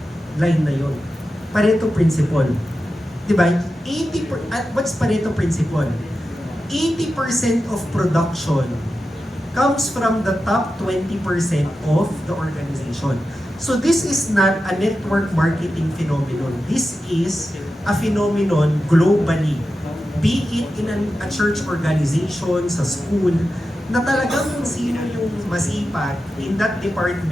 line na yon. Pareto principle. Diba? What's Pareto principle? 80% of production comes from the top 20% of the organization. So this is not a network marketing phenomenon. This is a phenomenon globally. Be it in a church organization, sa school, na talagang kung sino yung masipag in that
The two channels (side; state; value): both; normal; correlation 0.91